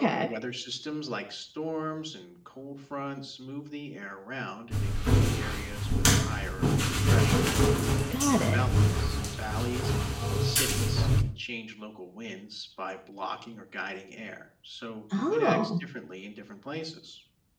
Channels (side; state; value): both; identical; correlation 1.00